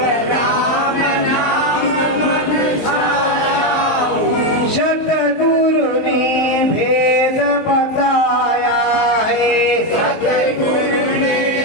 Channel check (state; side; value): late; right; 19 ms